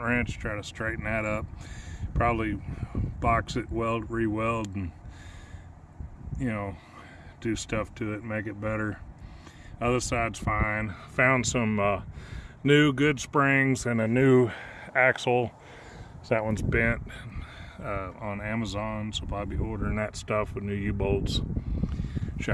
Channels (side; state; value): both; identical; correlation 1.00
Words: try to straighten that up. Probably box it, weld, re-weld, and do stuff to it, make it better. Other side's fine. Found some new good springs and a new axle. So that one's bent on Amazon, so I'll be ordering that stuff with new U-bolts,